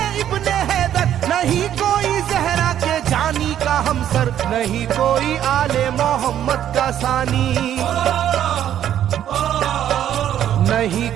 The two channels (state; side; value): quieter; left; 10.8 dB